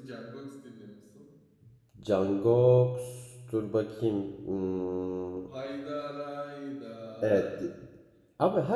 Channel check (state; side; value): identical; both; correlation 1.00